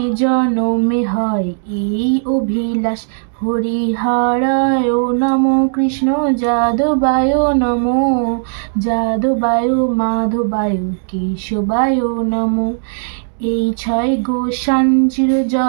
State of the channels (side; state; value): left; silent; 69 dB below the other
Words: জনমে হয় এই অভিলাষ। হরিহরায় নমো কৃষ্ণ যাদবায় নমো, যাদবায় মাধবায় কেশবায় নমো। এই ছয় গোসান চির